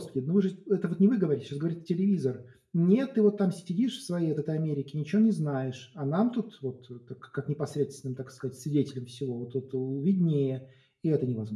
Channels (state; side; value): identical; both; correlation 1.00